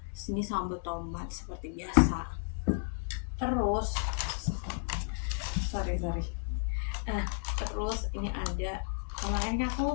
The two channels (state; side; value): silent; right; 56 dB below the other